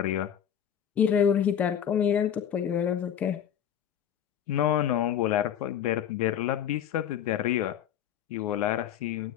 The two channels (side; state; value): right; quieter; 9.4 dB